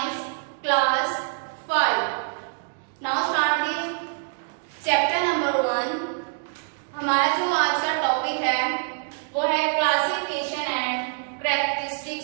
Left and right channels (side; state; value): left; silent; 61 dB below the other